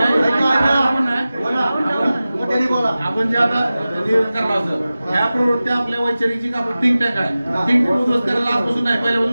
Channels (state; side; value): inverted; both; correlation -0.96